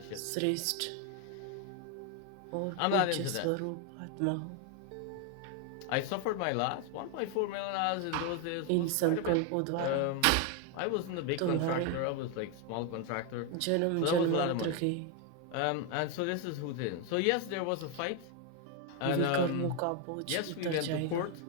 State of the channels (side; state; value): both; different; correlation 0.01